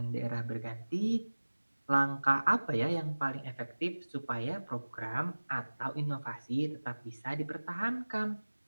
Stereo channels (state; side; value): inverted; both; correlation -1.00